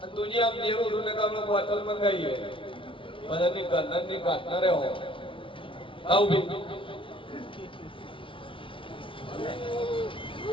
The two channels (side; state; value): right; late; 0.25 ms